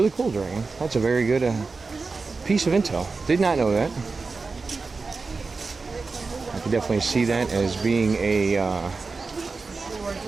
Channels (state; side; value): quieter; left; 4.2 dB